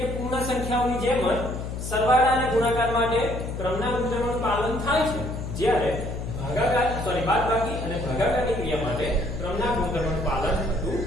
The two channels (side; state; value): left; noise; hum, 6 dB below the sound